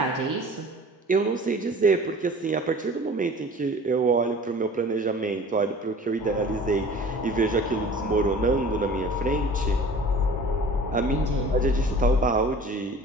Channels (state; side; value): normal; both; correlation 0.44